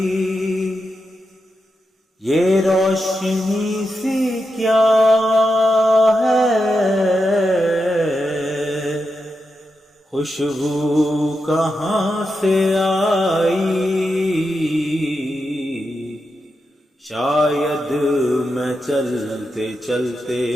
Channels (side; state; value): both; normal; correlation 0.87